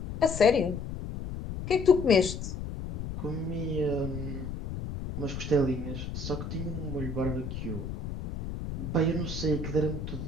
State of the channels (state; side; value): noise; left; rumble, 6 dB below the sound